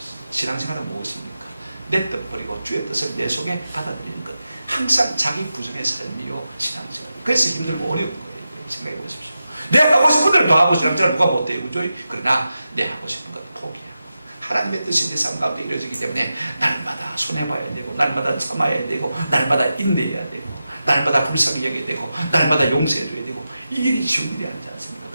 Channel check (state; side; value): inverted; both; correlation -0.91